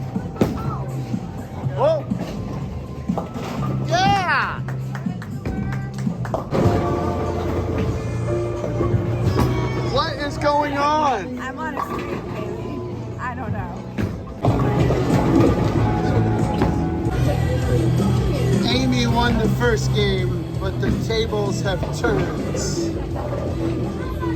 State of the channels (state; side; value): identical; both; correlation 1.00